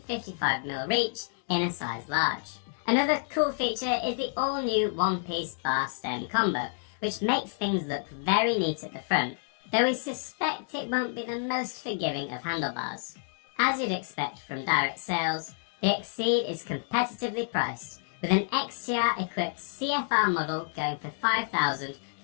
reach in a size large. Another cool feature is the all-new one-piece bar stem combo, which makes things look very neat at the front, though we suspect it won't be the most forgiving of handlebars. As you'd expect from direct sales, the Exceed is competitively priced, with an XTR-equipped CFR model going for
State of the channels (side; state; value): right; silent; digital silence